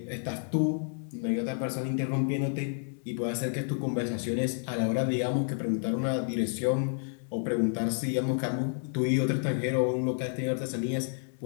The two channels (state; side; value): silent; right; 58 dB below the other